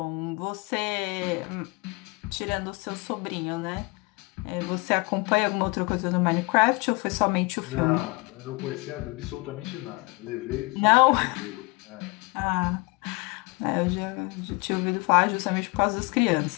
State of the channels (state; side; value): quieter; right; 26.9 dB